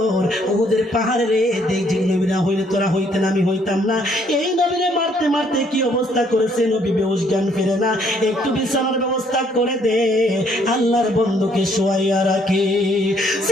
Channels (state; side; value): normal; both; correlation 0.66